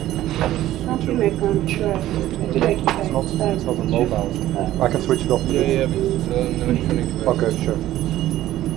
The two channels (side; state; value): left; quieter; 14.2 dB